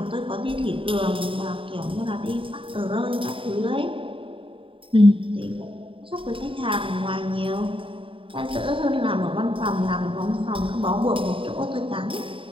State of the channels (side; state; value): left; late; 0.25 ms